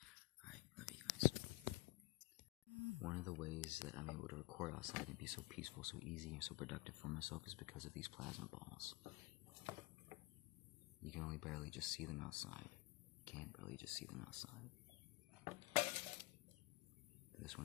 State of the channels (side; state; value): right; quieter; 21.6 dB